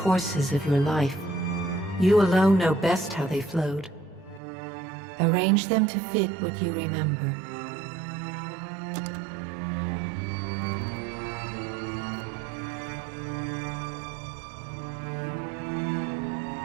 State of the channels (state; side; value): drops out; left; at 4.4 s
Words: of your life. You alone know best how they flowed. Arrange them to fit what you remember.